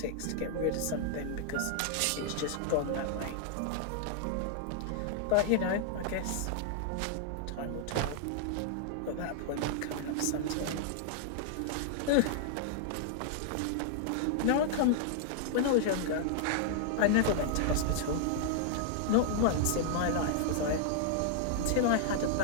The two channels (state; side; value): different; both; correlation -0.01